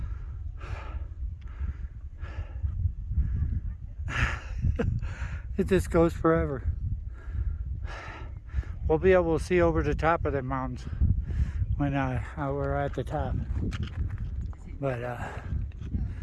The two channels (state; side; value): identical; both; correlation 1.00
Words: It just goes forever. We'll be able to see over the top of the mountains when we're at the top. But